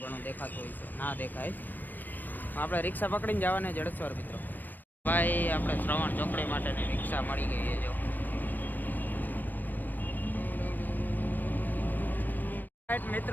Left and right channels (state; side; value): late; right; 0.086 ms